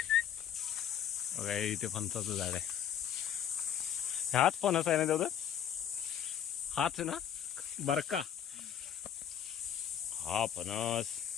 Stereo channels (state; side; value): quieter; right; 9.4 dB